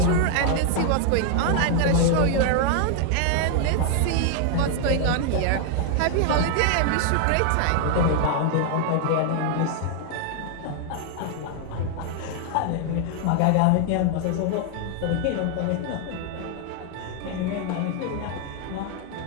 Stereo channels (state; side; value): different; both; correlation 0.00